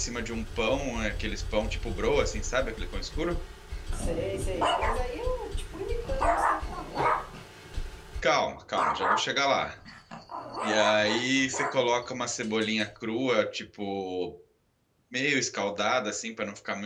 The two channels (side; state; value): both; identical; correlation 1.00